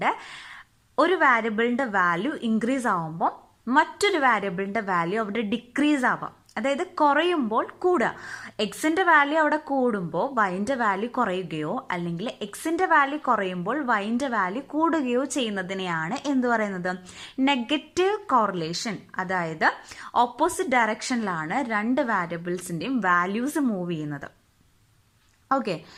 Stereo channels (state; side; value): identical; both; correlation 1.00